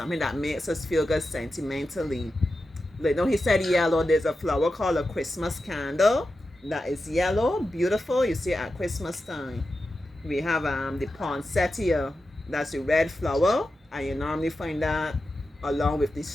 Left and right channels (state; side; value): normal; both; correlation 0.91